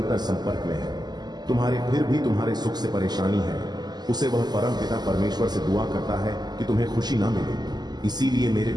संपर्क में है। तुम्हारे फिर भी तुम्हारे सुख से परेशानी है। उसे वह परम पिता परमेश्वर से दुआ करता है कि तुम्हें खुशी ना मिले। इसीलिए मेरे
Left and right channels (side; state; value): left; late; 0.20 ms